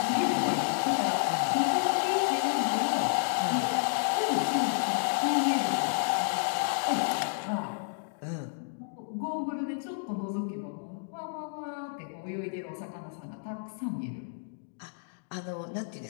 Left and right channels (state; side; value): silent; right; digital silence